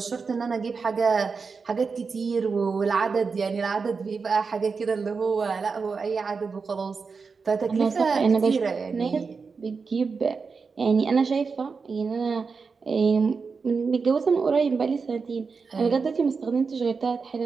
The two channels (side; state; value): left; quieter; 5.0 dB